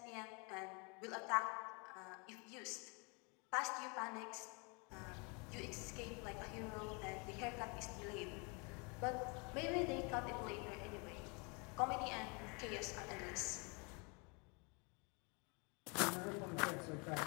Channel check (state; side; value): quieter; right; 32.0 dB